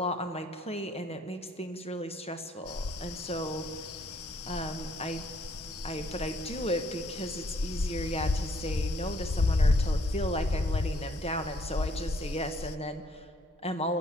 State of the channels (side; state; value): both; normal; correlation 0.65